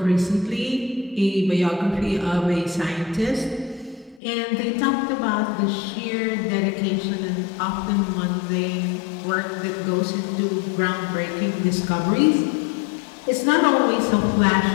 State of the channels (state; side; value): drops out; right; at 4.2 s